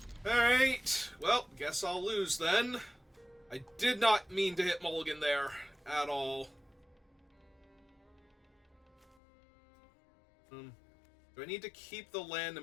Alright, well, guess I'll lose then. I did not mean to hit Mulligan there at all. Do I need to keep the land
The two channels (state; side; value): drops out; right; at 9.2 s